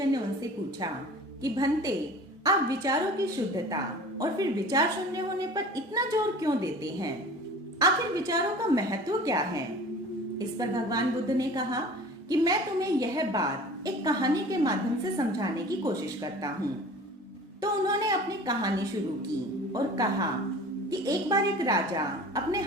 ने उनसे पूछा कि भंते, आप विचारों की शुद्धता और फिर विचार शून्य होने पर इतना जोर क्यों देते हैं? आखिर विचारों का महत्व क्या है? इस पर भगवान बुद्ध ने कहा कि मैं तुम्हें यह बात एक कहानी के माध्यम से समझाने की कोशिश करता हूँ। तो उन्होंने अपनी कहानी शुरू की और कहा कि एक बार एक राजा अपने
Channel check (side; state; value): both; normal; correlation 0.42